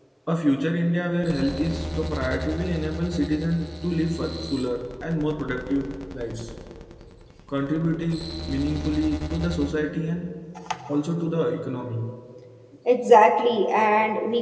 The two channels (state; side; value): identical; both; correlation 1.00